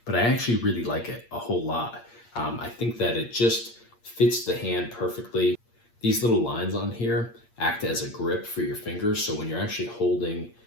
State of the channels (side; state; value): right; late; 8.6 ms